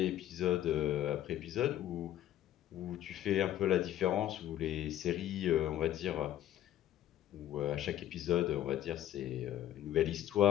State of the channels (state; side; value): quieter; right; 12.4 dB